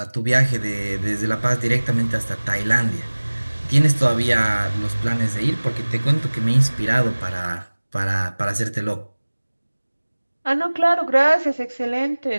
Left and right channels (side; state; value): both; inverted; correlation -1.00